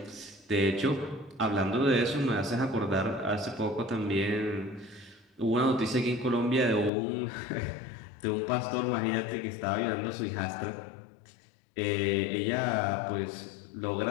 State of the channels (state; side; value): drops out; right; at 6.9 s